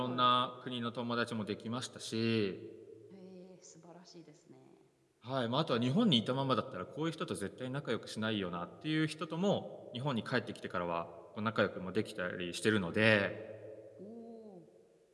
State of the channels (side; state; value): both; identical; correlation 1.00